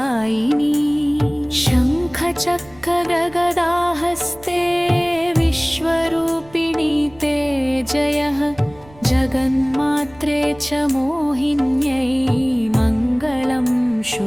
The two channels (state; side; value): noise; right; rumble, 24 dB below the sound